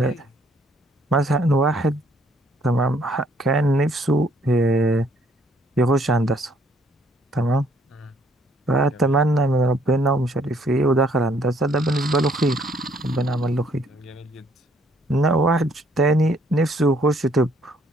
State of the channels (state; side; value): normal; both; correlation 0.65